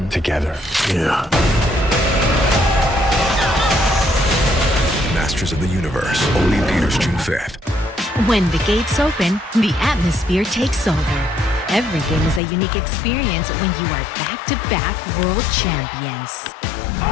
together. Yeah. Masters of the Universe. Only in theaters June 5th. When the gates open, the atmosphere takes over. Every game is a unique experience when you are back-to-back world champions.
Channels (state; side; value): drops out; right; at 12.4 s